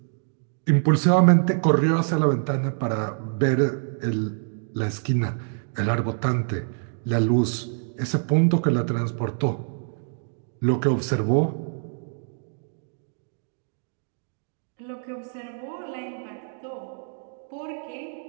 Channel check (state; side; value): silent; left; digital silence